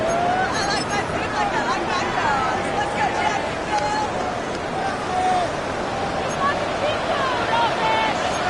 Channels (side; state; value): both; identical; correlation 1.00